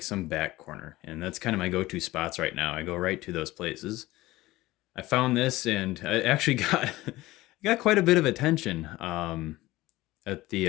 some back corner, and that's kind of my go-to spots right now. I go right to those places. I found this and I actually got quite a bit of attention at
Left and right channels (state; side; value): quieter; right; 18.3 dB